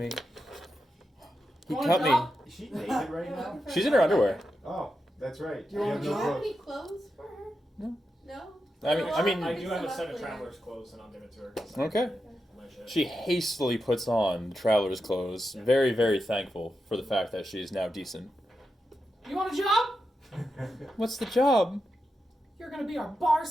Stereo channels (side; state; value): both; normal; correlation 0.88